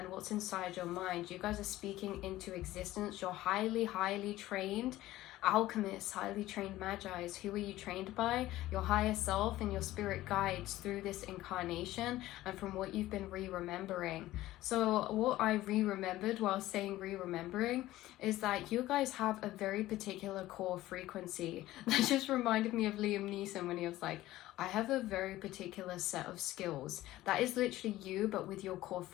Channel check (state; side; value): quieter; right; 15.9 dB